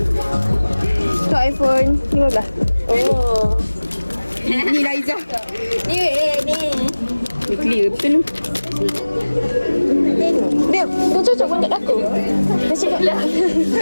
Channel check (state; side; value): inverted; both; correlation -1.00